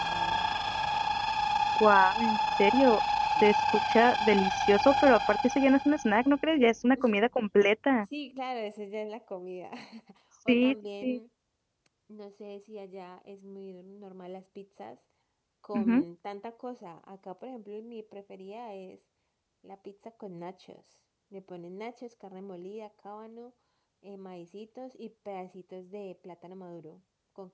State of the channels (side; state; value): both; identical; correlation 1.00